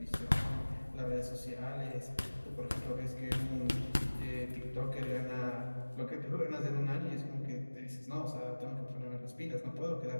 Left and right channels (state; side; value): inverted; both; correlation -1.00